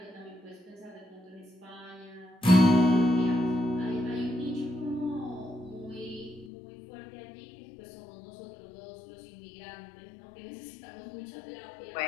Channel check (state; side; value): drops out; right; at 6.5 s